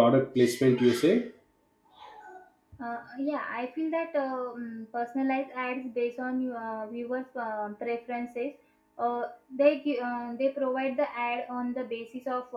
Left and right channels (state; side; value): identical; both; correlation 1.00